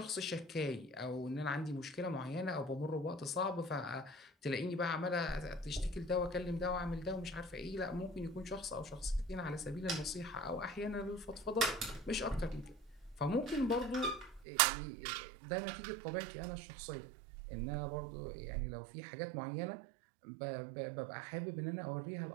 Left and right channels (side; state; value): left; drops out; at 14.5 s